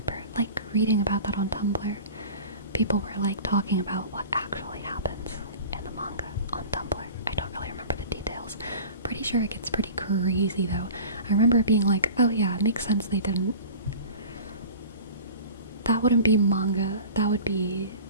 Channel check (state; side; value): inverted; both; correlation -0.39